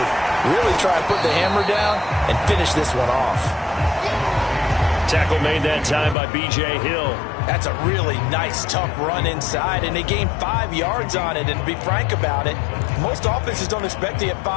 really try and put the hammer down and finish this one off. Tackle made that time by B.J. Hill. That's a really nice, tough run inside, and they gained 5 yards on it. And to be frank about it, most offenses don't expect to get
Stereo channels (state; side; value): drops out; right; at 6.2 s